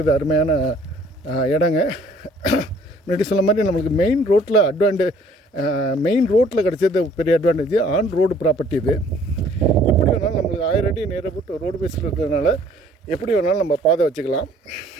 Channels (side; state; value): both; normal; correlation 0.58